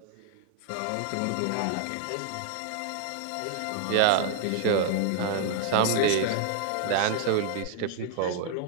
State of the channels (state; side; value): different; both; correlation 0.00